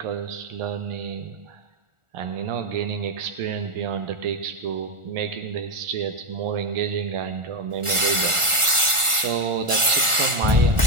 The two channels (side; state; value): left; late; 1.4 ms